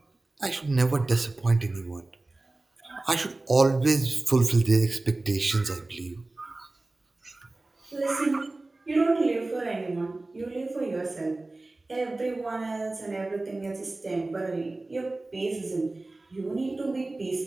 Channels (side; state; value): left; quieter; 3.0 dB